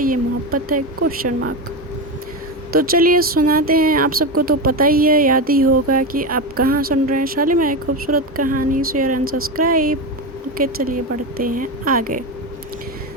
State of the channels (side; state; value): both; normal; correlation 0.16